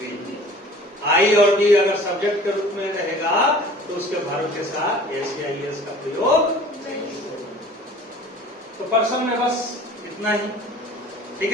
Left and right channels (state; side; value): normal; both; correlation 0.46